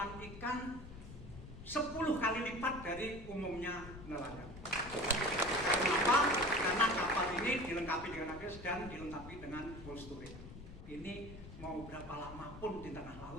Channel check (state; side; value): noise; left; rumble, 14 dB below the sound